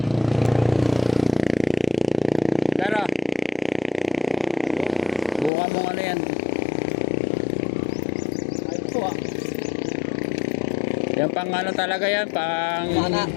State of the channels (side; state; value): right; drops out; at 5.5 s